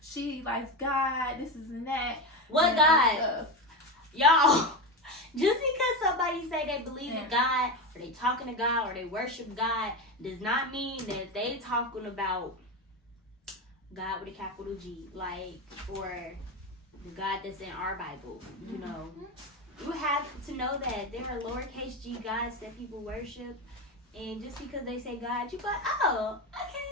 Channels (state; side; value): normal; both; correlation 0.17